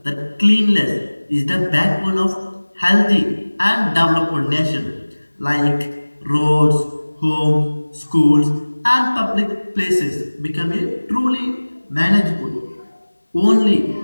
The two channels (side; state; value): both; inverted; correlation -1.00